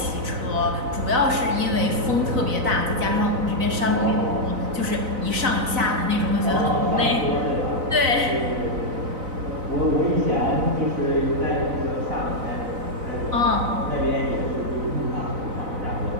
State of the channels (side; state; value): left; late; 4.0 ms